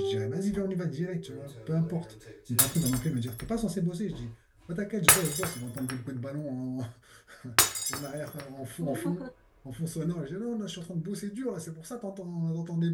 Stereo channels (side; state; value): both; identical; correlation 1.00